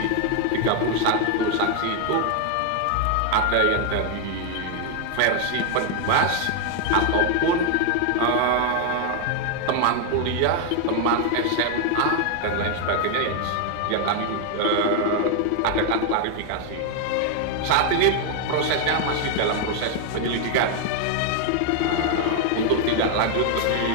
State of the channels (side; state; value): both; different; correlation 0.01